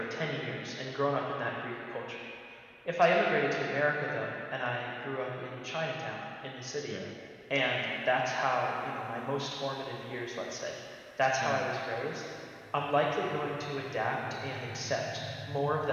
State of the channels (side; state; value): both; identical; correlation 1.00